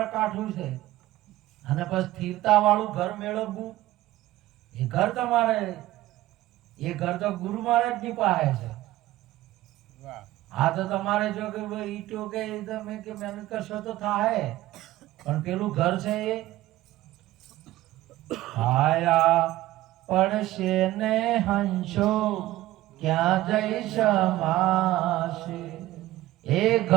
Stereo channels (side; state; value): left; quieter; 16.1 dB